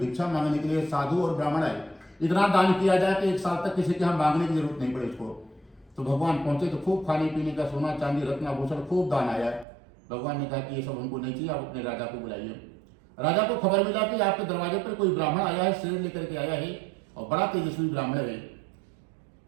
मांगने के लिए साधु और ब्राह्मण आए, इतना दान किया जाए कि 1 साल तक किसी के हम मांगने की जरूरत नहीं पड़े उसको। तो भगवान पहुंचे तो खूब खाने पीने का, सोना चांदी रत्न आभूषण खूब दान आया। भगवान ने कहा कि ये सब हमको नहीं चाहिए, आप अपने राजा को बुलाइए। राजा को खबर मिला कि आपके दरवाजे पर कोई ब्राह्मण आया है, शेर लेकर के आया है और बड़ा तेजस्वी ब्राह्मण है।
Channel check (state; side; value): drops out; left; at 9.7 s